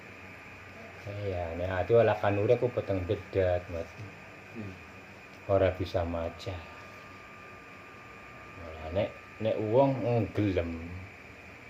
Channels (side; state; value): both; identical; correlation 1.00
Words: Ya, nek ati olah kanure ku peteng dedat, Mas. Ora bisa maca. Malah nek wong gelem.